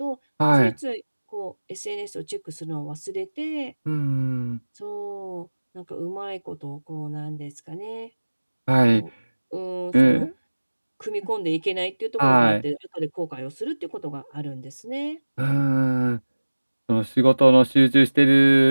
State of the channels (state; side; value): inverted; both; correlation -1.00